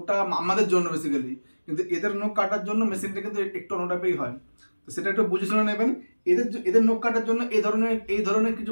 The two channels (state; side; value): inverted; both; correlation -1.00